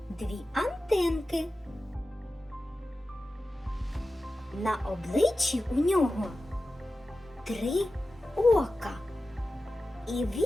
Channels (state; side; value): normal; both; correlation 0.94